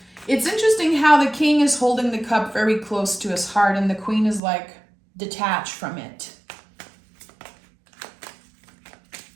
It's interesting how the King is holding the cup very close to his heart and the Queen is like detached from it.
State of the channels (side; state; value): left; drops out; at 4.4 s